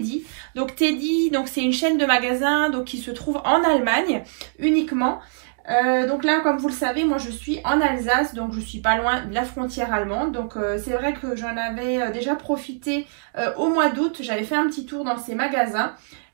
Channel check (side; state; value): left; silent; digital silence